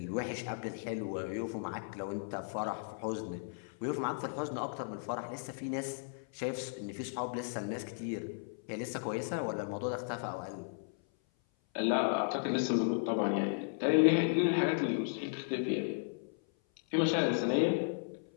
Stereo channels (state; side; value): silent; right; 54 dB below the other